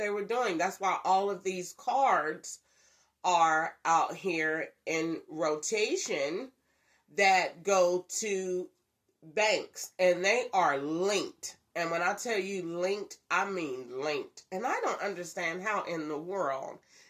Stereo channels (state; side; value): identical; both; correlation 1.00